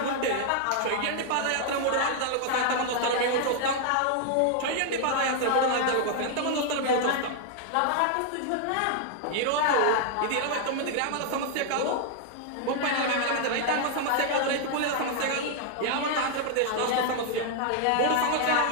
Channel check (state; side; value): different; both; correlation 0.00